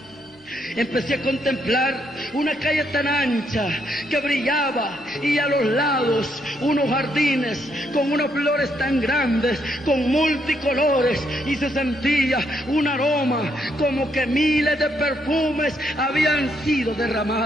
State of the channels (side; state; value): both; normal; correlation 0.75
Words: Empecé a contemplar una calle tan ancha que brillaba, y a los lados unos jardines con unas flores tan grandes, con multicolores, y se sentía un aroma como que miles de perfumes habían sido